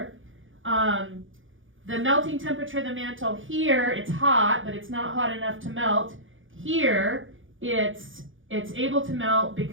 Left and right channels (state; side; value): late; left; 0.57 ms